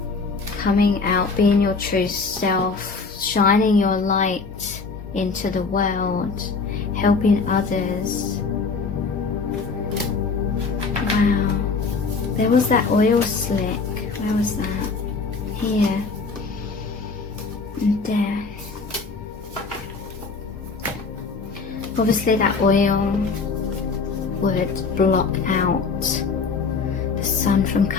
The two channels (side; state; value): right; quieter; 4.5 dB